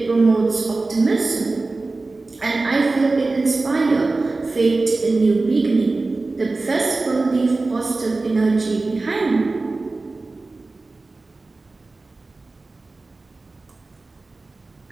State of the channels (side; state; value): left; quieter; 3.4 dB